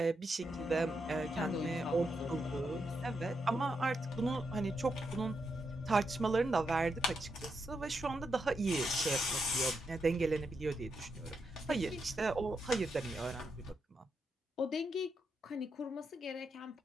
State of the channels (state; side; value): normal; both; correlation 0.83